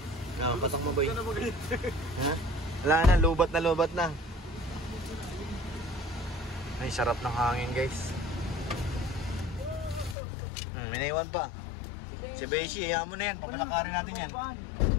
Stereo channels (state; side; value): drops out; right; at 10.2 s